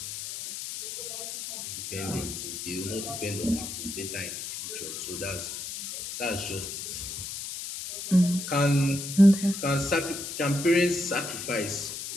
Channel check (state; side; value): noise; left; hiss, 7 dB below the sound